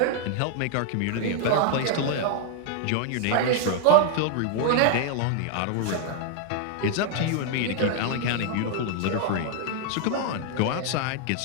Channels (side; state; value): both; different; correlation 0.00